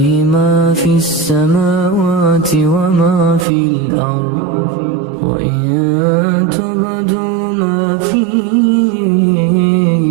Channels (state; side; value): drops out; left; at 3.5 s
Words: ما في السماوات وما في الأرض وإن تبدوا ما في